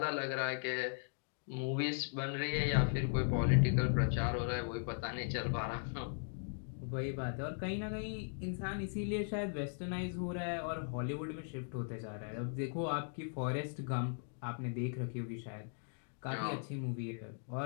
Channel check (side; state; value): right; silent; digital silence